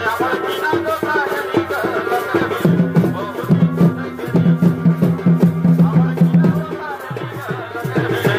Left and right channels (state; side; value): identical; both; correlation 1.00